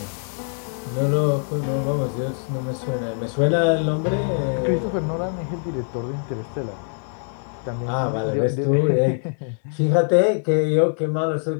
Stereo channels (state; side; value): silent; right; 56 dB below the other